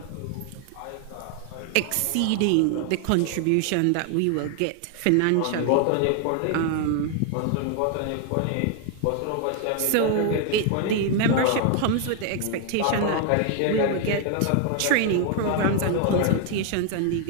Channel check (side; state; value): both; different; correlation 0.00